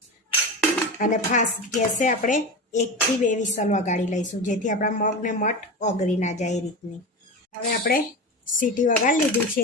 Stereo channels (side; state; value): both; normal; correlation 0.25